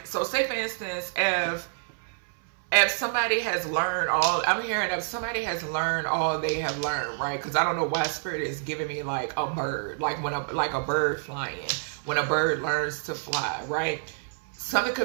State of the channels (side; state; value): left; silent; 60 dB below the other